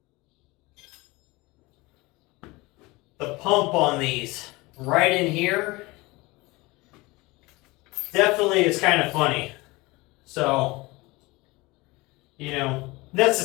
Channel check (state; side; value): quieter; right; 22.8 dB